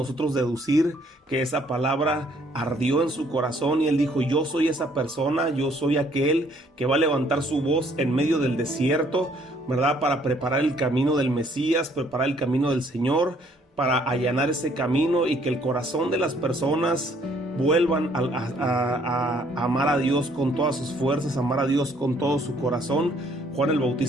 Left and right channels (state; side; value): normal; both; correlation 0.64